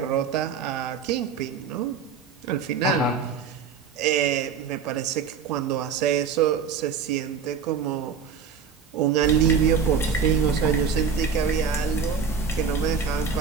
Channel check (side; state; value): left; quieter; 6.1 dB